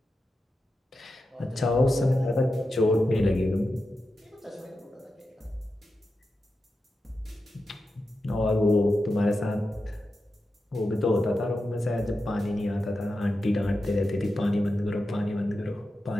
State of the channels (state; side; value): normal; both; correlation 0.90